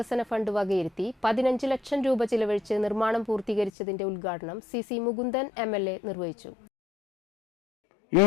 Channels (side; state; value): right; drops out; at 3.7 s